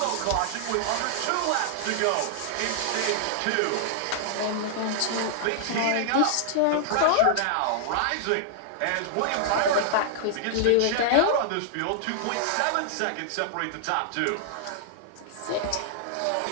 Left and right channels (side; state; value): both; different; correlation -0.01